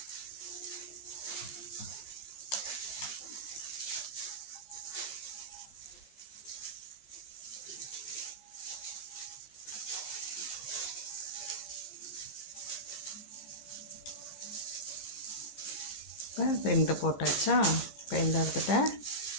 இப்போ 2 போட்டாச்சா. இப்போ இந்த இடத்துல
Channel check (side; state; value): right; late; 14 ms